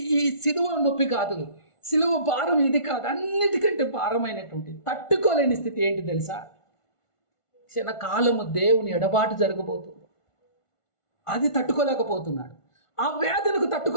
ఈ సిలువ నొప్పి కాదు, సిలువ భారం ఇది కాదు, అన్నిటికంటే భారమైనటువంటి తట్టుకోలేని స్థితి ఏంటి తెలుసా? క్షణకాలము దేవుని ఎడబాటు జరగబోతుంది. అది తట్టుకోలేకపోతున్నాడు. ఆ వేదనకు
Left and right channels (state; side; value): late; right; 1.5 ms